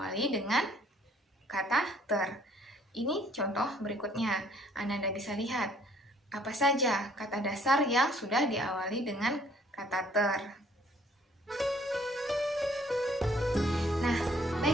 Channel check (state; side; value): normal; both; correlation 0.61